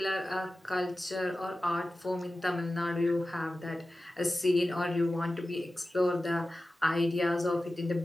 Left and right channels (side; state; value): both; normal; correlation 0.95